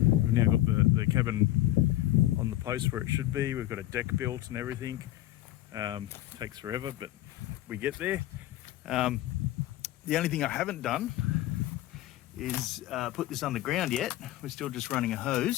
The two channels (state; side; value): quieter; right; 15.0 dB